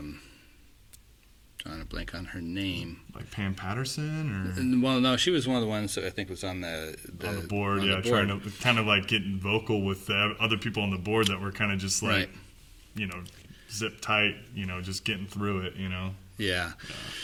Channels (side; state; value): both; identical; correlation 1.00